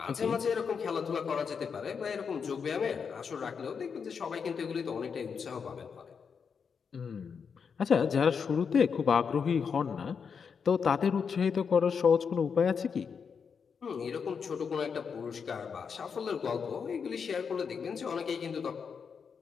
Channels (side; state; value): right; quieter; 6.2 dB